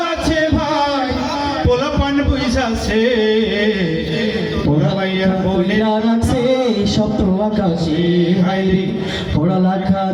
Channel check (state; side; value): identical; both; correlation 1.00